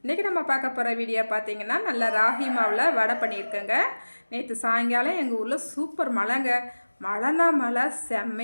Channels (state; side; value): inverted; both; correlation -1.00